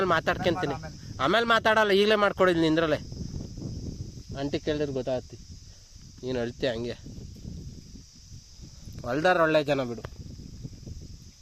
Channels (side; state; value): both; identical; correlation 1.00